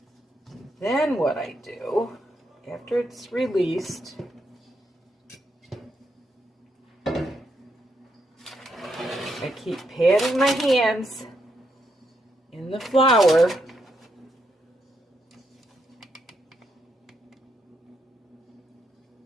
Then what I do, after it's released, I keep patting my hands in the flour.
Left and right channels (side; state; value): both; normal; correlation 0.79